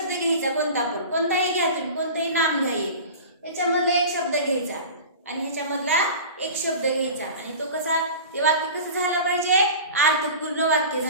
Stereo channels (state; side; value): inverted; both; correlation -0.35